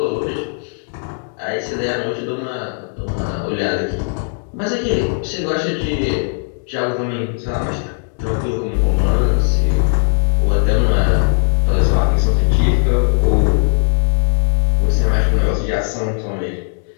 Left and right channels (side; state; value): right; silent; digital silence